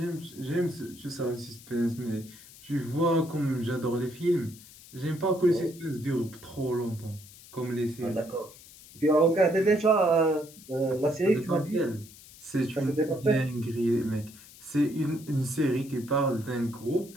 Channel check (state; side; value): noise; left; hiss, 20 dB below the sound